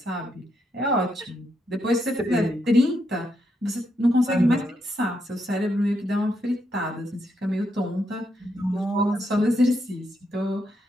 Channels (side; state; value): both; normal; correlation 0.79